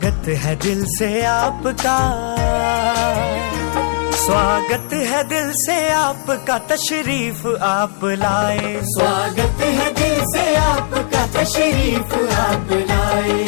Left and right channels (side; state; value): right; silent; digital silence